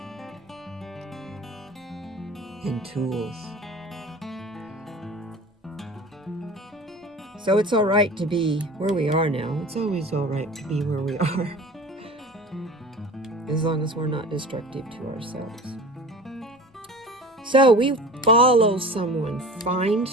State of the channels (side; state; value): both; normal; correlation 0.38